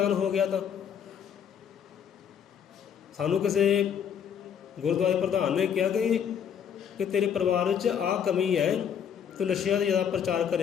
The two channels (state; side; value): quieter; right; 8.1 dB